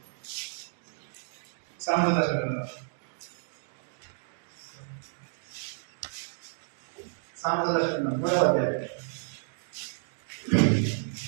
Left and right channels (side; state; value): left; silent; digital silence